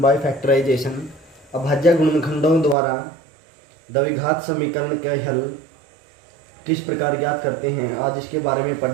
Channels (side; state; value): left; drops out; at 2.8 s